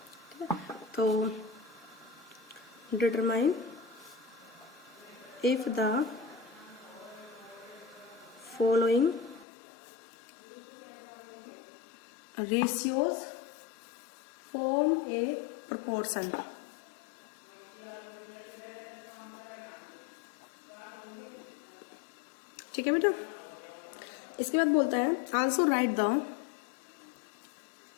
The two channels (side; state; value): right; drops out; at 9.5 s